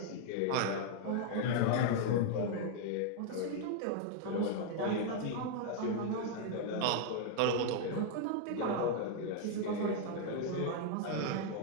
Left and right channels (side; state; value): both; different; correlation 0.00